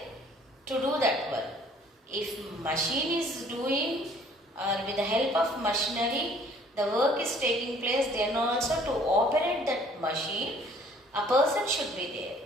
to do that work. If machine is doing or with the help of machinery the work is taking place, then also to operate that machine a person should be there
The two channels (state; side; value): normal; both; correlation 0.56